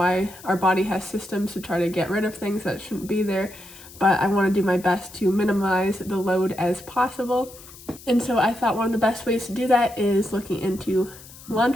our body has systems to try to get rid of things that shouldn't be there. But I want to do my best to minimize the load as possible. And so I thought one of the best ways to do that is looking into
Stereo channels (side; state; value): left; noise; hiss, 19 dB below the sound